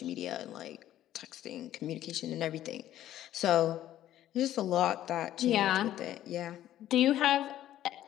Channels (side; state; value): right; quieter; 12.7 dB